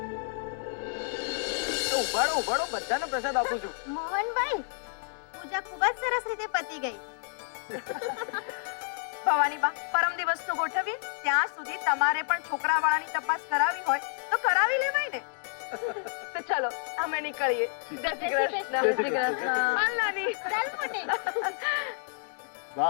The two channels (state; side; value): silent; right; digital silence